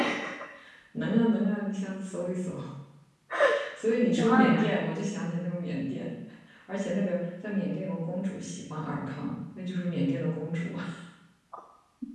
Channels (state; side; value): identical; both; correlation 1.00